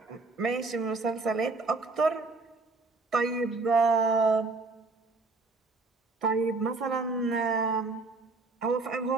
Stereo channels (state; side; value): quieter; left; 3.7 dB